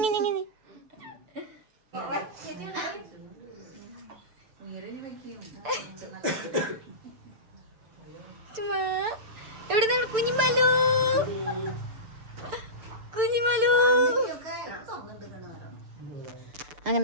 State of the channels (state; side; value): late; left; 6.9 ms